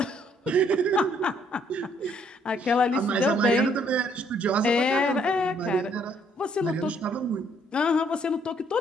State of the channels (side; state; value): both; normal; correlation 0.66